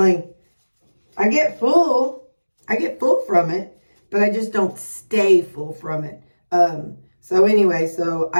get full. I get full from it, but I just don't stay full from it. So anyway, so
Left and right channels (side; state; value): both; inverted; correlation -1.00